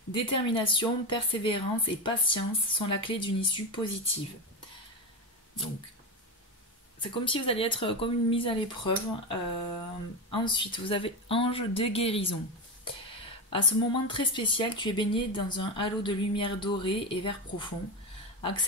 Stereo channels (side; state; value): both; normal; correlation 0.16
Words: Détermination, persévérance et patience sont la clé d'une issue positive. Donc, c'est comme si vous alliez être comme une mise à l'épreuve. Ensuite, vous avez ange de guérison. À ce moment très spécial, tu es baigné dans un halo de lumière dorée et vert profond.